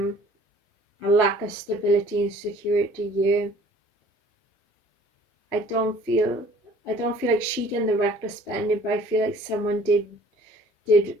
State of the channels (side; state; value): both; normal; correlation 0.52